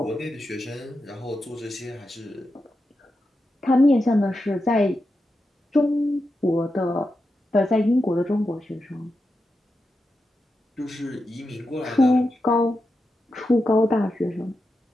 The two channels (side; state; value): both; normal; correlation 0.88